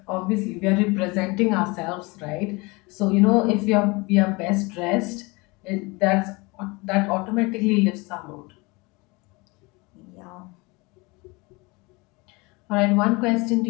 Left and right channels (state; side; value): quieter; right; 25.7 dB